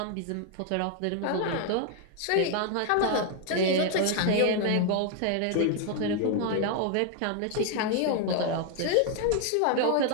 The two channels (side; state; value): both; different; correlation 0.00